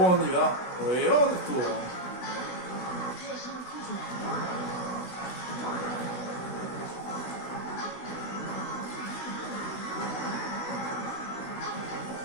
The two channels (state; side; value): late; right; 16 ms